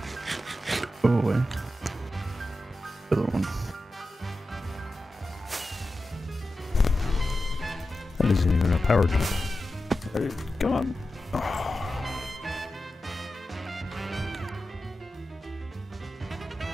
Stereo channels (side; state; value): both; normal; correlation 0.92